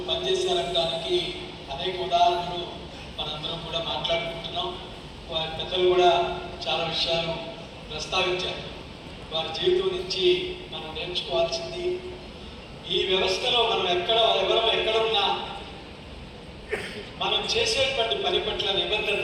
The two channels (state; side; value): identical; both; correlation 1.00